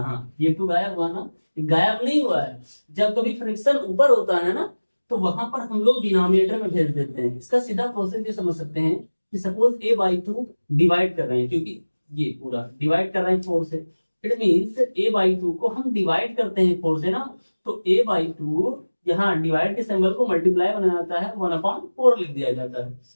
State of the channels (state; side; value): inverted; both; correlation -1.00